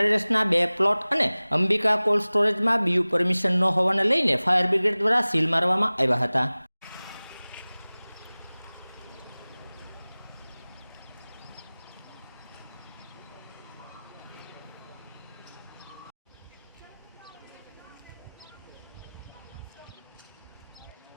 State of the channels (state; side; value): inverted; both; correlation -0.99